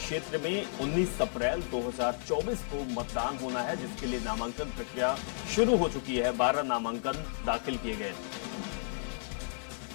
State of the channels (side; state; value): right; silent; 56 dB below the other